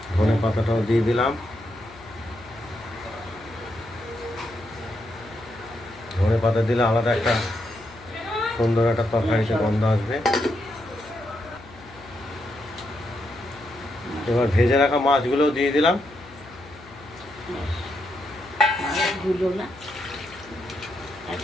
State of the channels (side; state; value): left; noise; hum, 21 dB below the sound